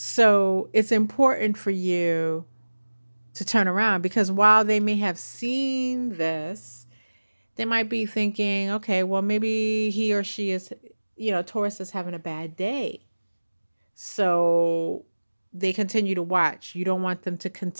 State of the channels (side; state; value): both; inverted; correlation -1.00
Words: it's important for you to turn around because while they may have seen this, they might be thinking, okay, well, maybe he or she is, Taurus is having a bad day. So they continue to watch. You don't want them to